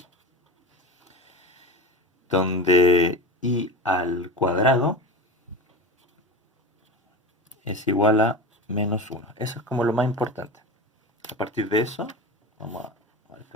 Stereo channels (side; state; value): both; normal; correlation 0.27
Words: donde i al cuadrado es igual a -1. Eso es como lo más importante. A partir de eso, vamos a